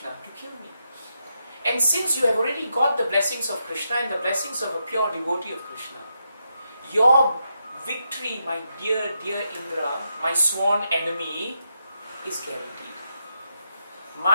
to kill me. And since you have already got the blessings of Krishna and the blessings of a pure devotee of Krishna, your victory, my dear, dear Indra, my sworn enemy, is guaranteed.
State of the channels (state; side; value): inverted; both; correlation -0.83